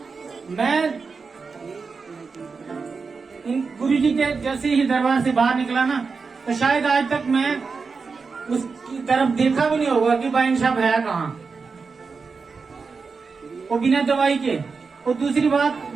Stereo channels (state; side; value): quieter; left; 4.8 dB